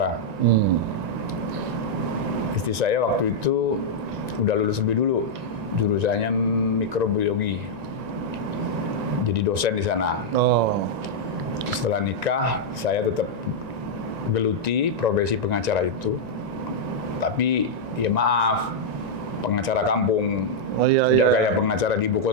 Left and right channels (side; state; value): left; late; 1.9 ms